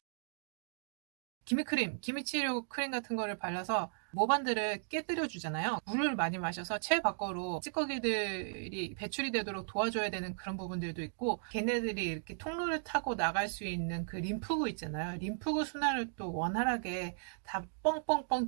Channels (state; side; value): silent; left; digital silence